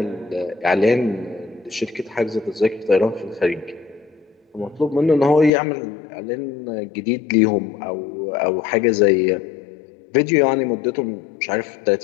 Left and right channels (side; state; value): right; drops out; at 5.5 s